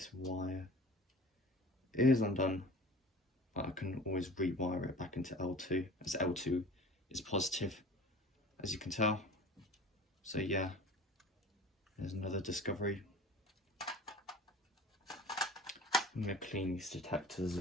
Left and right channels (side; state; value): both; normal; correlation 0.40